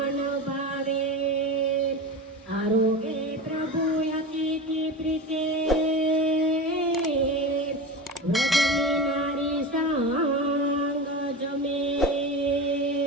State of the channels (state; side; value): normal; both; correlation 0.26